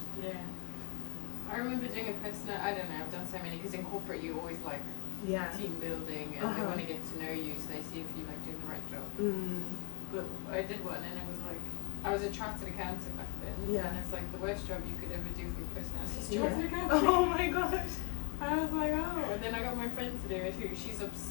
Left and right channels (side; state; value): right; quieter; 34.3 dB